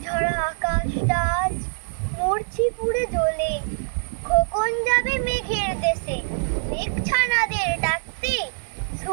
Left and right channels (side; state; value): left; silent; 63 dB below the other